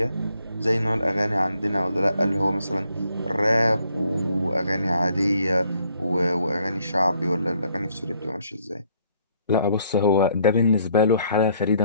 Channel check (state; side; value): inverted; both; correlation -0.68